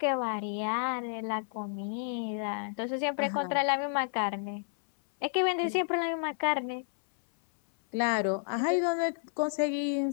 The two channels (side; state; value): right; silent; 57 dB below the other